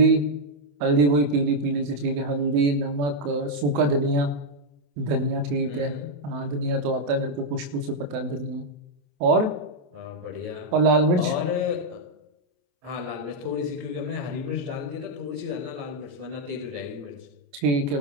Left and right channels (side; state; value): left; late; 28 ms